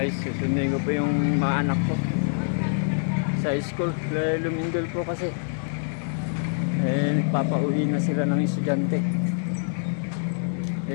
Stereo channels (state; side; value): silent; right; 61 dB below the other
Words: susundin ko po yung mga anak ko sa school. Lumindol po kasi. Nagpapauwi na sila ng estudyante.